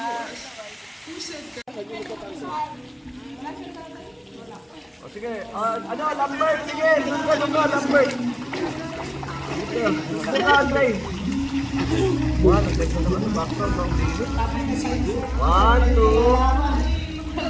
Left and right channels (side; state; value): both; identical; correlation 1.00